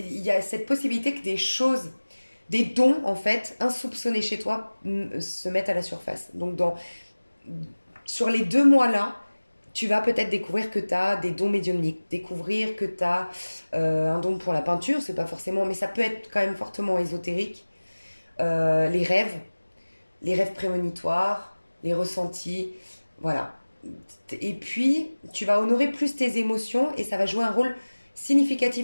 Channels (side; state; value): both; inverted; correlation -1.00